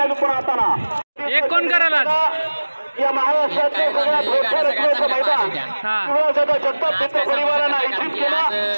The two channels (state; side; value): inverted; both; correlation -1.00